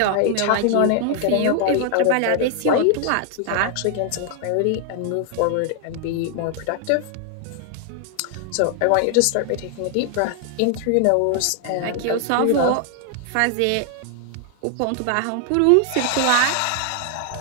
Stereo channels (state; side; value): different; both; correlation 0.00